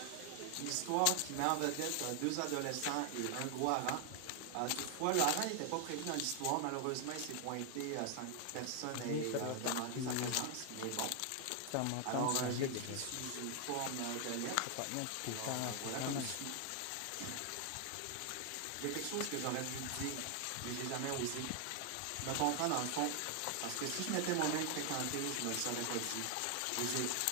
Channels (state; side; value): different; both; correlation 0.00